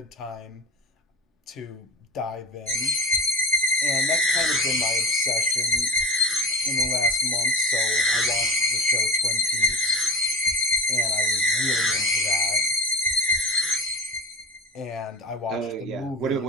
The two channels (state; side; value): normal; both; correlation 0.32